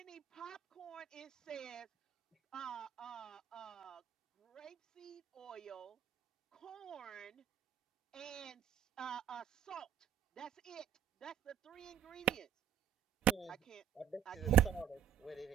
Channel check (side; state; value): left; quieter; 10.2 dB